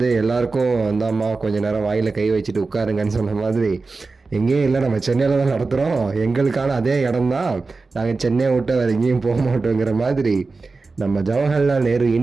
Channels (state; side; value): quieter; left; 4.0 dB